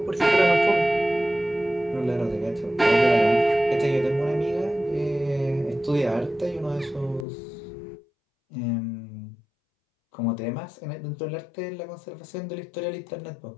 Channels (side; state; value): right; drops out; at 7.2 s